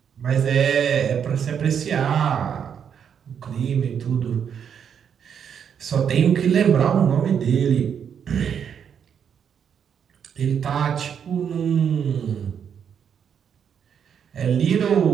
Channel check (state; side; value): quieter; left; 7.8 dB